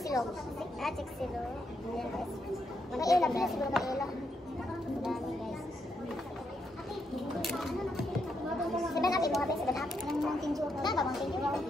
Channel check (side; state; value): both; normal; correlation 0.79